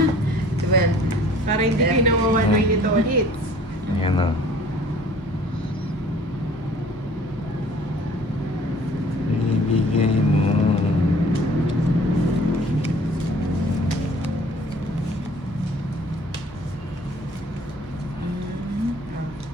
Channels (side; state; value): right; noise; hum, 22 dB below the sound